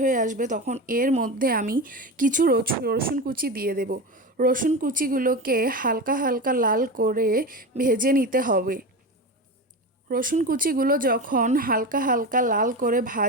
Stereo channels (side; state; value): both; normal; correlation 0.23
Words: হয়ে আসবে তখন এর মধ্যে আমি কিছু রসুন কুচি দিয়ে দেব। রসুন কুচিগুলোকে হালকা হালকা লাল করে ভেজে নিতে হবে। রসুন কুচিগুলো যখন হালকা হালকা লাল করে